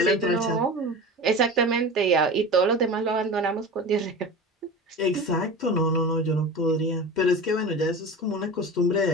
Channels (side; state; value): both; normal; correlation 0.31